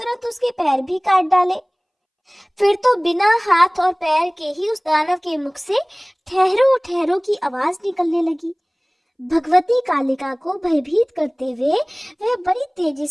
उसके पैर भी काट डाले। फिर तो बिना हाथ और पैर के ही उस दानव के मुख से ठहरो ठहरो की आवाज निकलने लगी। भगवती कालिका को भयभीत करते हुए वह बड़ी तेजी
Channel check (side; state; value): both; identical; correlation 1.00